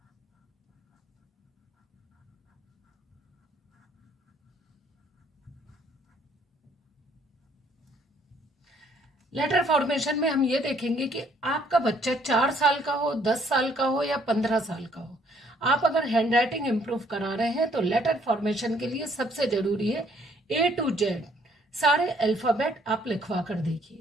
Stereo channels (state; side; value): normal; both; correlation 0.64